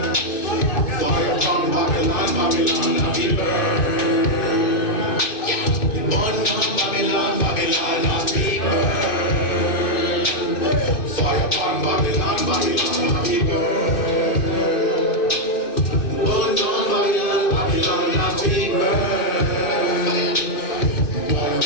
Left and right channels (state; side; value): late; right; 2.6 ms